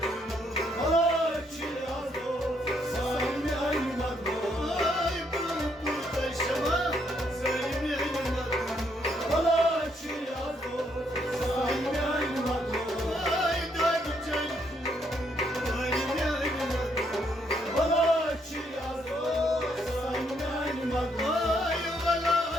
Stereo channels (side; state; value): both; normal; correlation 0.73